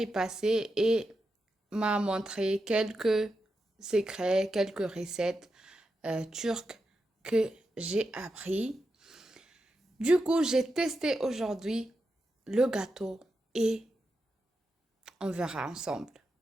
passée et m'a montré quelques secrets, quelques recettes turques que j'ai appris. Du coup, j'ai testé aujourd'hui le gâteau et on verra ensemble.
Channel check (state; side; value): normal; both; correlation 0.88